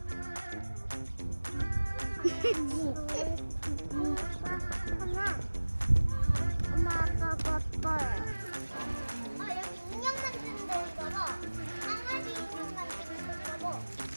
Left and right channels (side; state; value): both; inverted; correlation -1.00